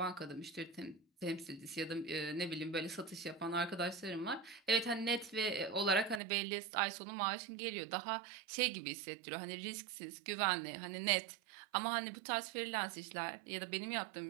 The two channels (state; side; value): drops out; left; at 6.2 s